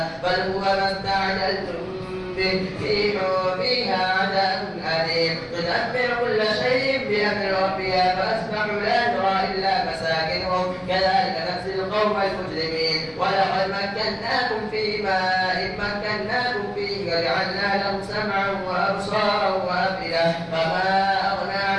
بل هو ما استعجلتم به ريح فيها عذاب أليم تدمر كل شيء بأمر ربها فأصبحوا لا ترى إلا مساكنهم كذلك نجزي القوم المجرمين. ولقد مكناكم في ماء مكناكم فيه وجعلنا لهم سمعا وأبصارا وأفئدة فما أغنى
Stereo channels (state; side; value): identical; both; correlation 1.00